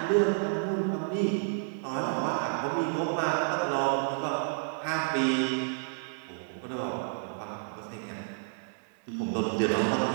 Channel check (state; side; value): silent; left; digital silence